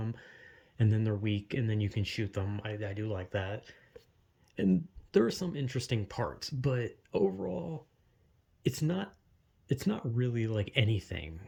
and then they're weak, and then you can shoot them. I do like that, and there are some interesting parts, but overall, it's not it's not really like anything.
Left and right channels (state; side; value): identical; both; correlation 1.00